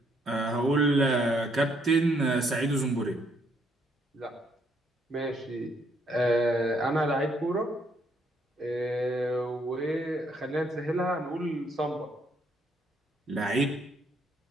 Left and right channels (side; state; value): both; normal; correlation 0.70